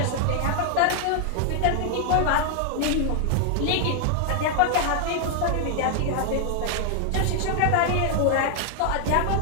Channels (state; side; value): different; both; correlation 0.00